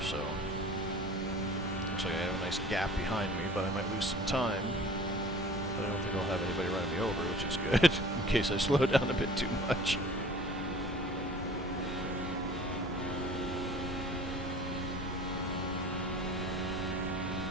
so looks like I have a nice gap behind me, but I might lose some time. But I don't think I'll have anybody running me over, which is good, in case I slow down a bit too much.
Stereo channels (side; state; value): both; normal; correlation 0.46